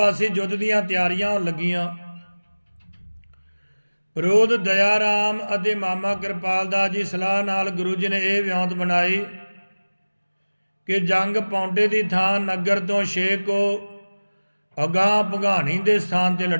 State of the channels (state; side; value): inverted; both; correlation -1.00